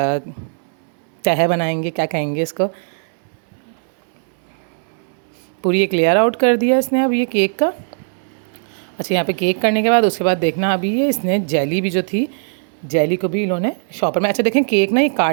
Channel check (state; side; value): silent; left; digital silence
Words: तह बनाएंगे, क्या कहेंगे इसको, पूरी एक लेयर आउट कर दिया इसने अब ये केक का। अच्छा, यहाँ पे केक करने के बाद उसके बाद देखना अभी ये इसने जेली भी जो थी, जेली को भी इन्होंने शॉपर में, अच्छा देखें केक ना ये